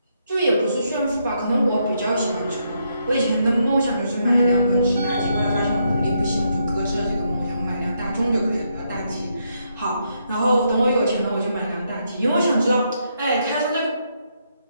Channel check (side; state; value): both; inverted; correlation -0.78